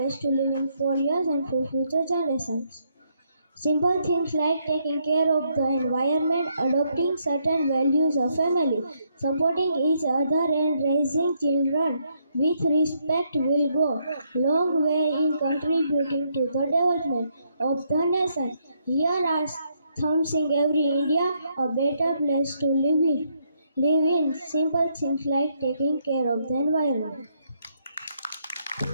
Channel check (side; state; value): both; inverted; correlation -0.75